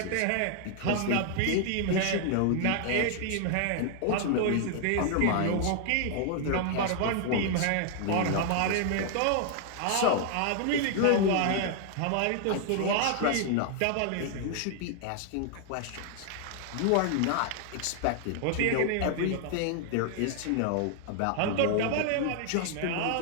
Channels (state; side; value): different; both; correlation 0.00